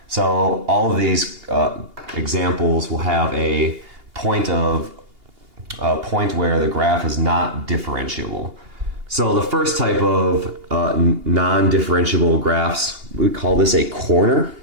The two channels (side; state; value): left; late; 2.8 ms